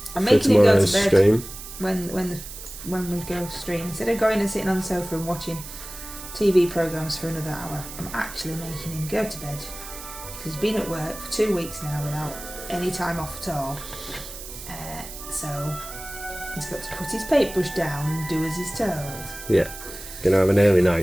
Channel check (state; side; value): noise; right; hiss, 12 dB below the sound